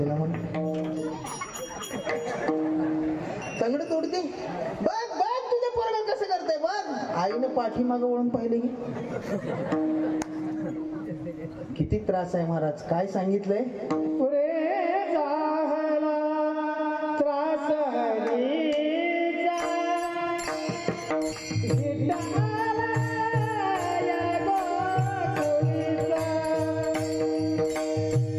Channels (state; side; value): identical; both; correlation 1.00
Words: म्हण तंगड तोडते. बघ बघ तुझ्या पोराला कसं करताय बघ. आईने पाठीमागं वळून पाहिले की किती त्रास आहे महाराज. काय सांगितलंय? पुरे झाला त्रास हरीचा, विठ्ठला या गोकुळीचा.